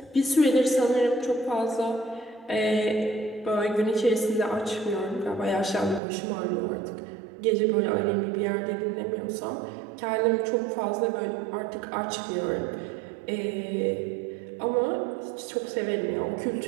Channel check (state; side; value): drops out; left; at 6.0 s